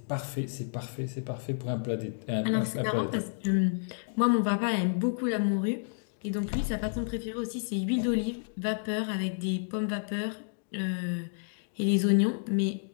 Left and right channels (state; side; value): silent; right; digital silence